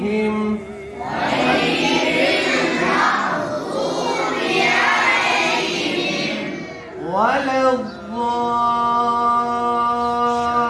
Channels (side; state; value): both; identical; correlation 1.00